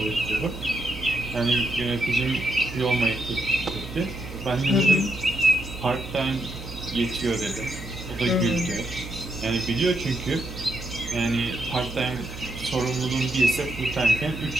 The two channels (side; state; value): right; noise; hum, 11 dB below the sound